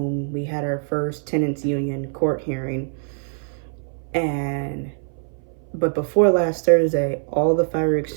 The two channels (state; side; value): silent; left; 59 dB below the other